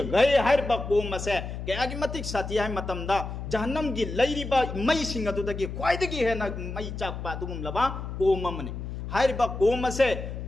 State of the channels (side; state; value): left; noise; hum, 7 dB below the sound